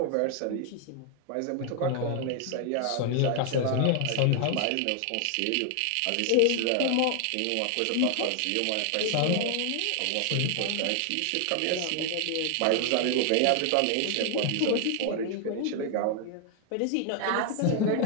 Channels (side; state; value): both; different; correlation 0.00